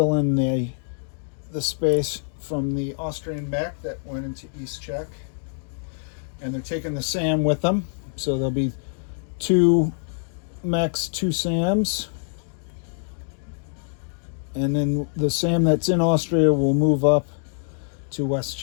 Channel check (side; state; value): right; silent; digital silence